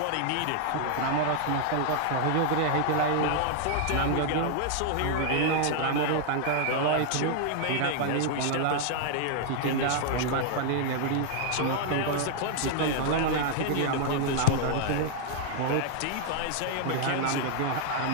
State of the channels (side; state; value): both; different; correlation 0.00